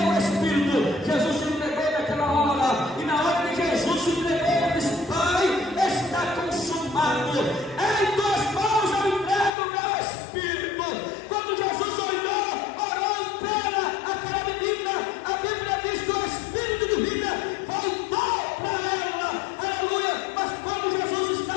o Espírito, Jesus se entregou naquela hora, e na hora que Jesus se entregou, ele disse: Pai, está consumado, em tuas mãos eu entrego o meu Espírito. Quando Jesus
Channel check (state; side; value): drops out; right; at 9.5 s